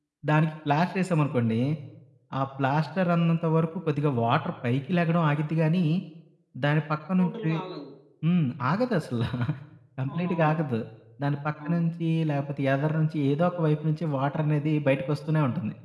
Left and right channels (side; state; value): both; identical; correlation 1.00